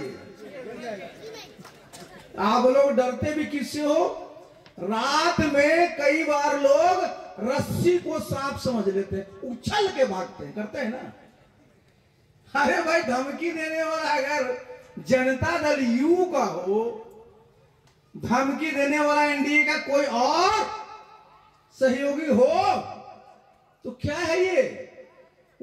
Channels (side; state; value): both; identical; correlation 1.00